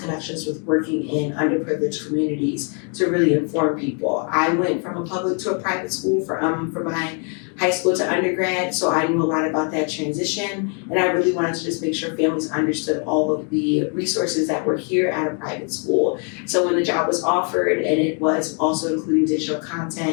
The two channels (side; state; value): right; quieter; 39.8 dB